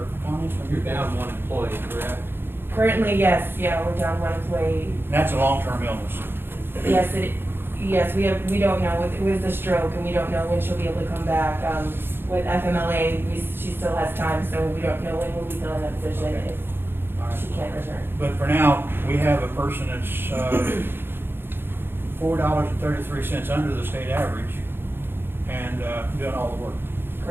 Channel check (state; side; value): late; left; 0.10 ms